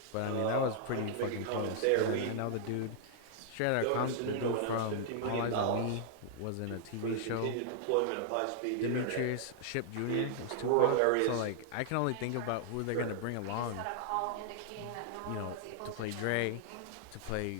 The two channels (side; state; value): both; different; correlation -0.01